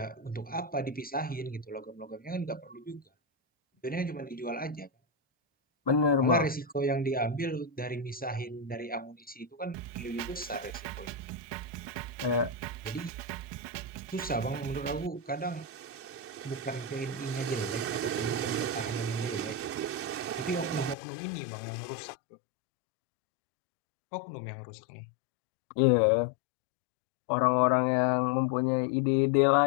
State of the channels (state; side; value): drops out; right; at 21.0 s